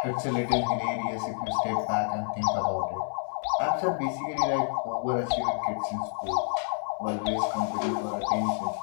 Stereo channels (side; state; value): right; silent; 59 dB below the other